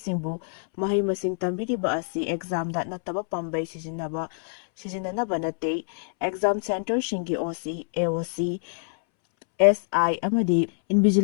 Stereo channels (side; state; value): right; silent; 61 dB below the other